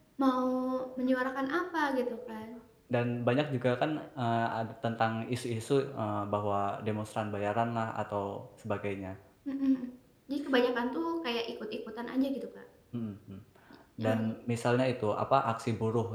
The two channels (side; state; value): both; identical; correlation 1.00